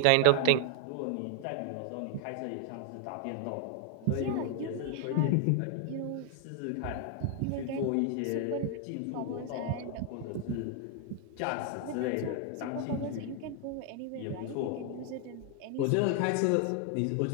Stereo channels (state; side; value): different; both; correlation 0.00